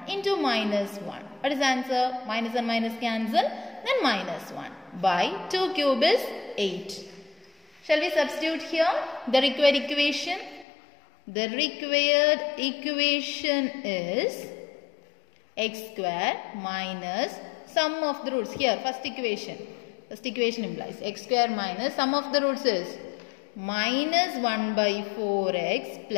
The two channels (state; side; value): drops out; right; at 10.7 s